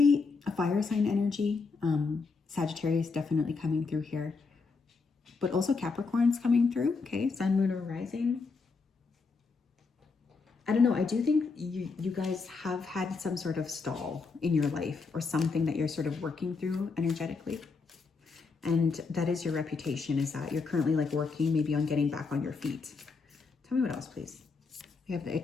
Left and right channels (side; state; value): right; quieter; 4.5 dB